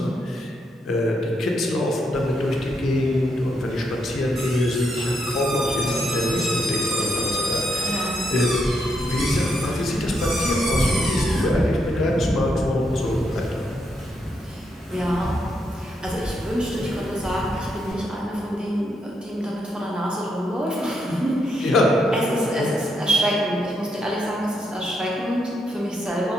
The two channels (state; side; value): normal; both; correlation 0.79